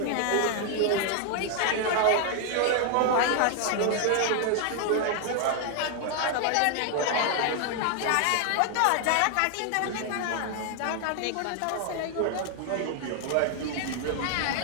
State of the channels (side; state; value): both; different; correlation 0.00